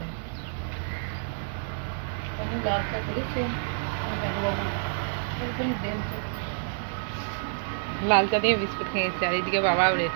আমি লাল চা করেছি দাদুবাবু ওইখানে দেন তো। লাল চা দিয়ে বিস্কুট খেয়েছে, আর এদিকে বাবাও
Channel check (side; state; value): left; silent; digital silence